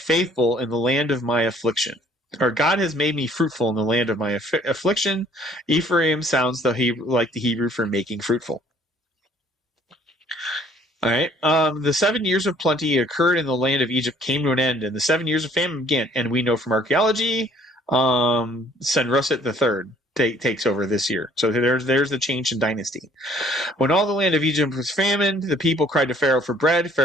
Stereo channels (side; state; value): both; normal; correlation 0.59